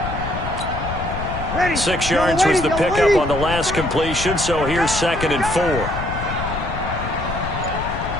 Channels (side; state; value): left; noise; rumble, 6 dB below the sound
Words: Ready. 6 yards was the pickup on the last completion, so here's 2nd and 4.